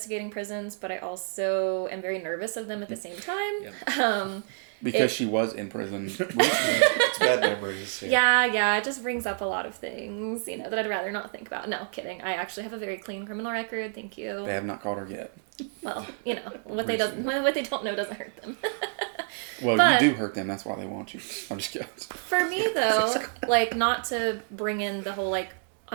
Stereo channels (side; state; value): left; silent; digital silence